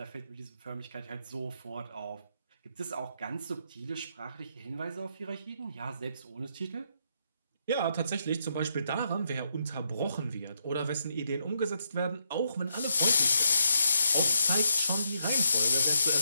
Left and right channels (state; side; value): inverted; both; correlation -0.79